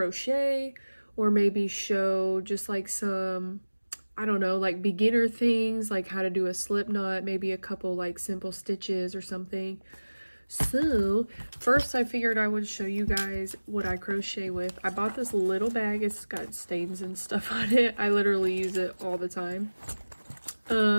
or maybe show just like some, I don't know, like beginner things, like how to do a slip knot, maybe a couple like simple stitches or something. So first I figured I would show you guys what I crochet with. I bought this little bag. It's got stains and stuff on it. I literally use it all the time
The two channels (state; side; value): inverted; both; correlation -1.00